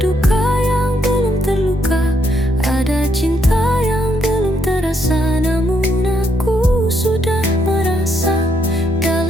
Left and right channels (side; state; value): both; normal; correlation 0.75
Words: yang belum terluka, ada cinta yang belum terasa, namun aku sudah merasa.